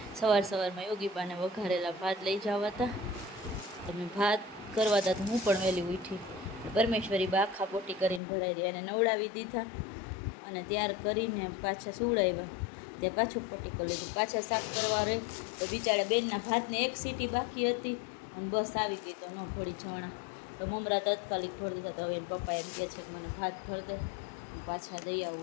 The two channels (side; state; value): right; drops out; at 8.2 s